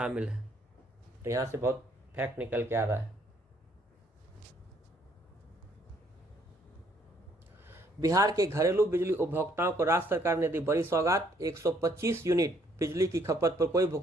है। तो यहाँ से बहुत फैक्ट निकल के आ रहा है। बिहार के घरेलू बिजली उपभोक्ताओं को राज्य सरकार ने दी बड़ी सौगात, 125 यूनिट बिजली की खपत पर कोई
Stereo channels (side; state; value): both; normal; correlation 0.66